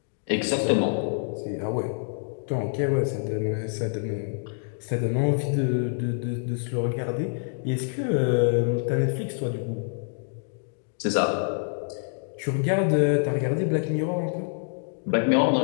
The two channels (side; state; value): right; silent; digital silence